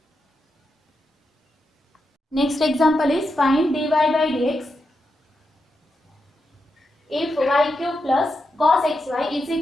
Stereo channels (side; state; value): both; normal; correlation 0.86